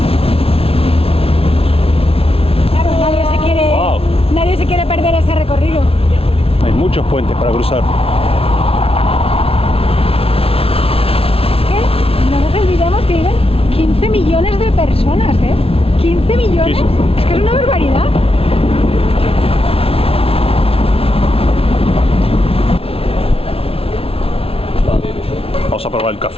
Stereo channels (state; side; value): late; right; 0.27 ms